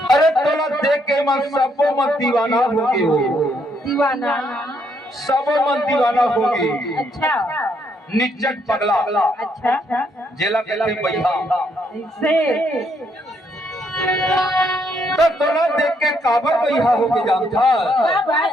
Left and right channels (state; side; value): normal; both; correlation 0.73